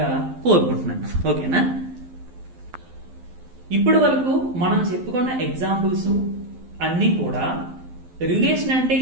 కోరుకుంటున్నాను. ఓకేనా? ఇప్పటి వరకు మనం చెప్పుకున్న ఎగ్జాంపుల్స్ అన్ని కూడా రిలేషన్ అంటే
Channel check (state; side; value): late; left; 12 ms